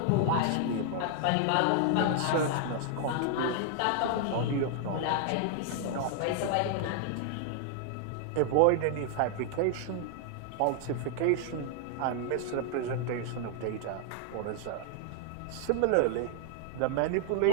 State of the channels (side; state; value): both; different; correlation 0.00